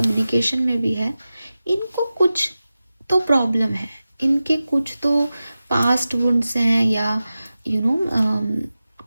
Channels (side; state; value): both; inverted; correlation -0.95